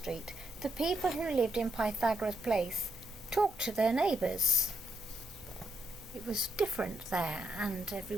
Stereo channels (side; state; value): both; normal; correlation 0.79